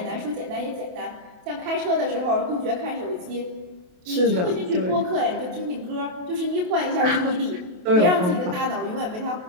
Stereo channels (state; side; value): late; left; 28 ms